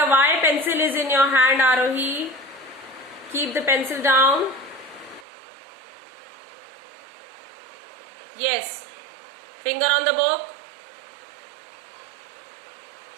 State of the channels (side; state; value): left; drops out; at 5.2 s